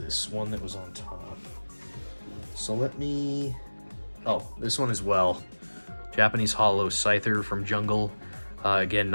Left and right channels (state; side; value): inverted; both; correlation -1.00